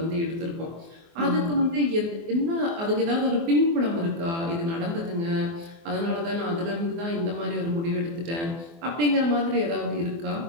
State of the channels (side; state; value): left; late; 24 ms